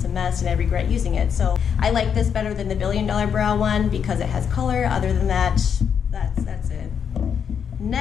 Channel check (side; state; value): right; quieter; 7.5 dB